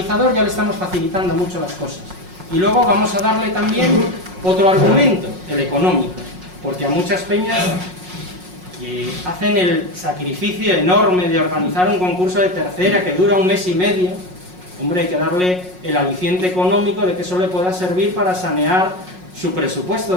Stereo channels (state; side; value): late; left; 5.5 ms